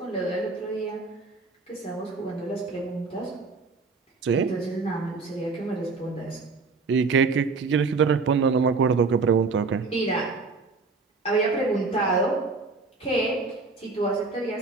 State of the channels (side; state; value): left; quieter; 4.2 dB